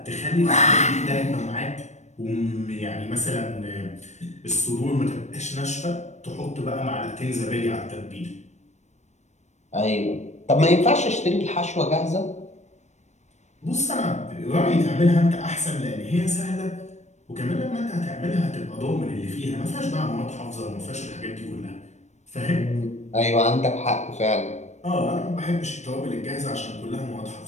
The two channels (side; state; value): right; late; 0.33 ms